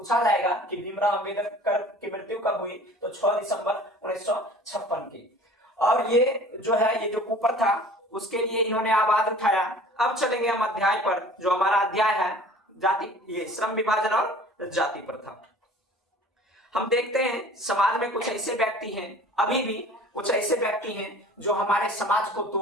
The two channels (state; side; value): normal; both; correlation 0.47